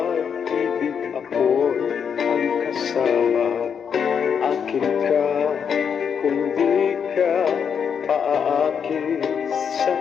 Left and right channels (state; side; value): quieter; right; 7.2 dB